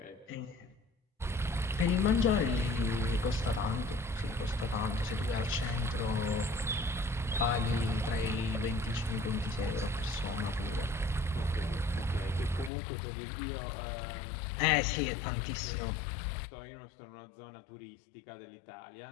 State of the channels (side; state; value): right; drops out; at 12.7 s